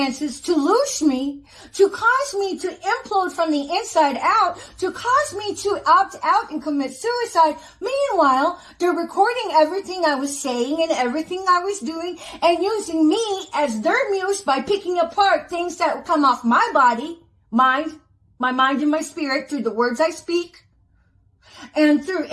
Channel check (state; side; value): identical; both; correlation 1.00